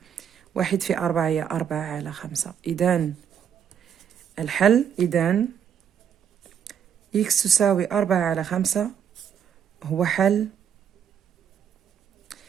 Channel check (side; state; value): left; quieter; 8.4 dB